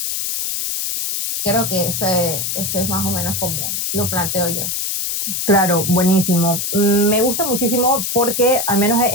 Creo que ese es más o menos como lo planteo yo. Claro, buenísimo. Me gusta muchísimo porque, al menos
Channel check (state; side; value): noise; left; hiss, 2 dB below the sound